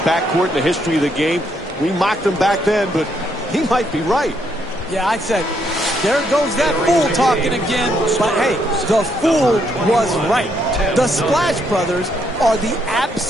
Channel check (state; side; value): normal; both; correlation 0.74